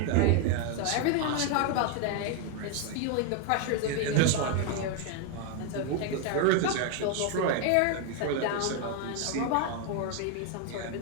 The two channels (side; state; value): both; different; correlation 0.01